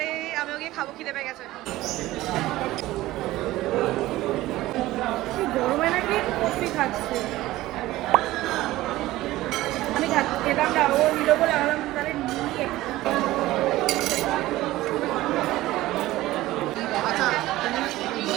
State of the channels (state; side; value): quieter; left; 16.9 dB